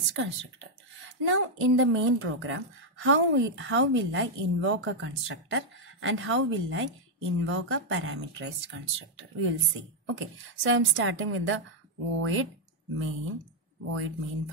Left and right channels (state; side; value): normal; both; correlation -0.02